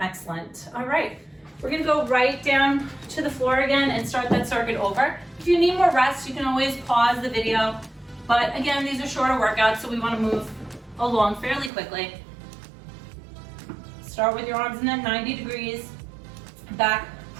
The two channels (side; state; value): left; drops out; at 11.7 s